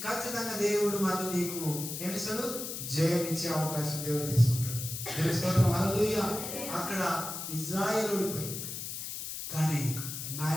ఖచ్చితంగా దేవుడు మళ్ళీ నీకు ఏమిస్తాడు? జయం ఇచ్చే అవకాశం దేవుడు తీసుకుంటాడు. దేవుని స్తోత్రం. హల్లెలూయా. అక్కడ ఇజ్రాయెల్ ఓడిపోయింది కానీ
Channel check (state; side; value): noise; left; hiss, 6 dB below the sound